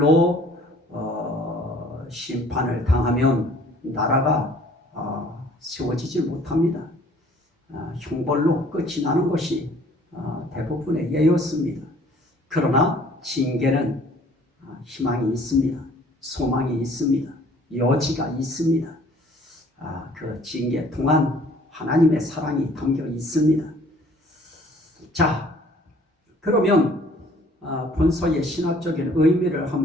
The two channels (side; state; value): both; normal; correlation 0.55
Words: 심판을 당하면 나라가 세워지지 못합니다. 형벌로 끝이 나는 것이 대부분의 예였습니다. 그러나 징계는 희망이 있습니다. 소망이 있습니다. 여지가 있습니다. 그 징계 동안 하나님의 사랑이 담겨 있습니다. 자, 그러면 본서의 신학적인 의미를